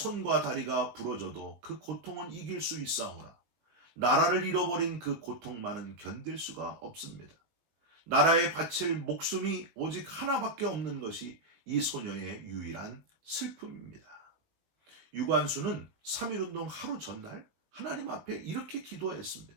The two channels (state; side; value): late; left; 19 ms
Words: 다리가 부러져도 그 고통은 이길 수 있사오나 나라를 잃어버린 그 고통만은 견딜 수가 없습니다. 나라에 바칠 목숨이 오직 하나밖에 없는 것이 이 소녀의 유일한 슬픔입니다. 유관수는 3.1운동 하루 전날 하나님 앞에 이렇게 기도했습니다.